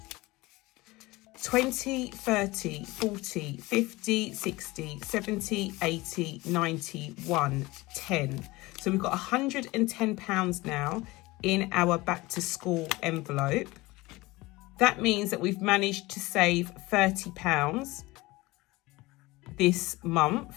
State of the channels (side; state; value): right; quieter; 21.0 dB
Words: 20, 30, 40, 50, 60, 70, 80, 90, 1, 10. So we've got £110 now in our back to school envelope. That means that we've managed to save £30 this